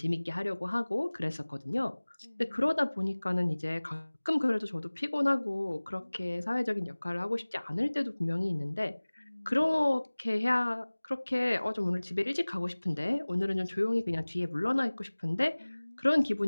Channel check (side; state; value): both; inverted; correlation -1.00